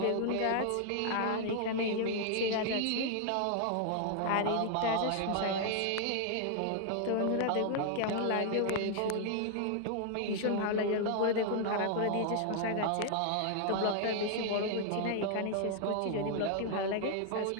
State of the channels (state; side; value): different; both; correlation 0.00